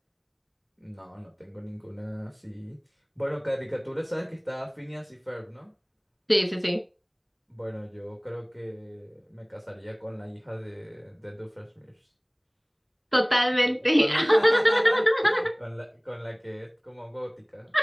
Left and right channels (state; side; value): identical; both; correlation 1.00